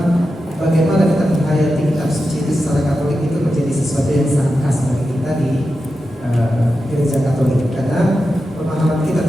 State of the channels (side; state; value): both; normal; correlation 0.90